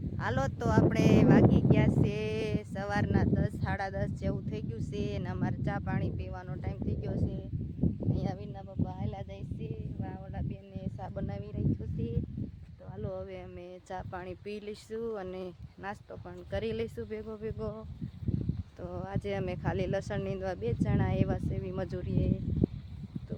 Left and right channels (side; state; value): both; identical; correlation 1.00